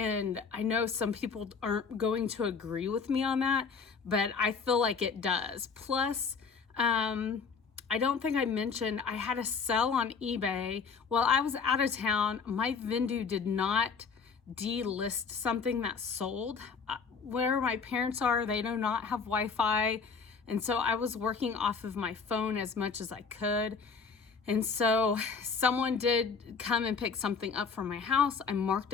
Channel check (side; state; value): right; quieter; 5.4 dB